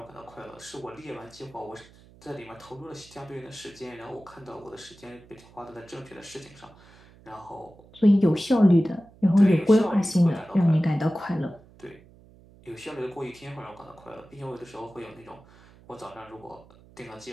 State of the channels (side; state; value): right; noise; hum, 25 dB below the sound